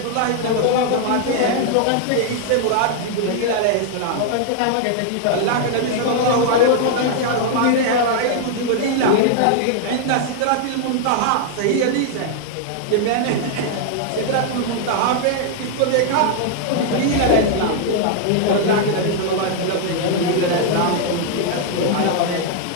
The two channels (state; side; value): different; both; correlation 0.00